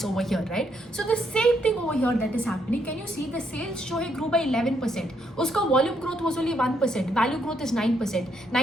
over here, right? So the same thing over here that is happening. Can you see the sales show grew by 11%, uska volume growth was only 1%, value growth is 9%.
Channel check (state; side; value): normal; both; correlation 0.75